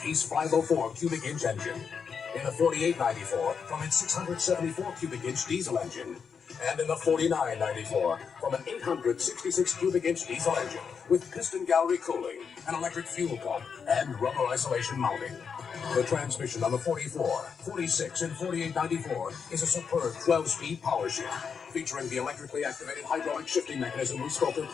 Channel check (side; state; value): right; quieter; 6.3 dB